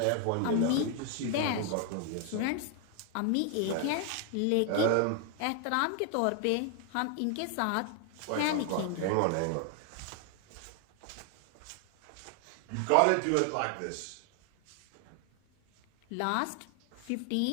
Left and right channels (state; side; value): different; both; correlation 0.00